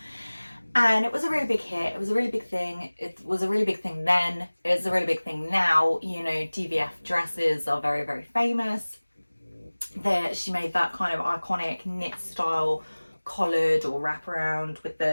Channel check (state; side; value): inverted; both; correlation -1.00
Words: And it was a really big hit. It was a really big thing. It was a really big thing then. It's a really big thing now. You know, DVF dresses are very, very famous. She made that kind of iconic knit style collared or wraparound with